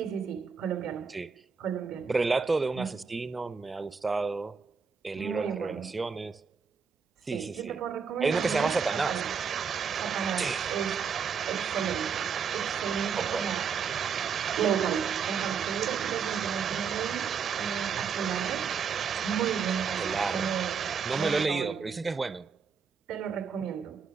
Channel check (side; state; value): left; quieter; 6.1 dB